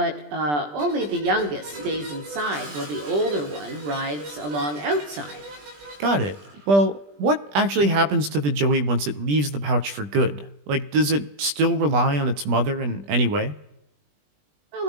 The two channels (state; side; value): late; left; 20 ms